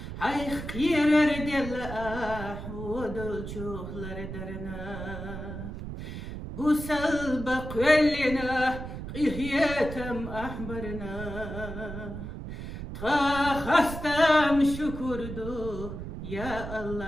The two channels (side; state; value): right; noise; rumble, 8 dB below the sound